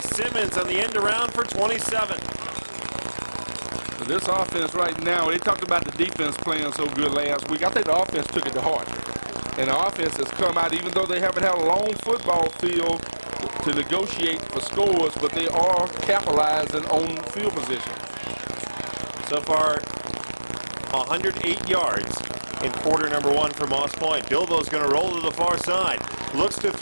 on the end around for 27. This offense right now, they talked about the defense playing so good last week. I think the offense took it to heart. And the offense has come out, even though they haven't had a long football field to negotiate for scores, but they are capitalizing on field position. So far, 108 yards in quarter number 1 for Moss Point. Bilbo's going to roll to the far side. Looks to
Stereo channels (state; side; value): inverted; both; correlation -1.00